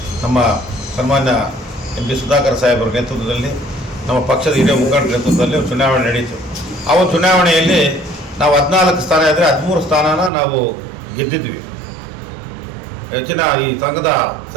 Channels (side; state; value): left; drops out; at 10.3 s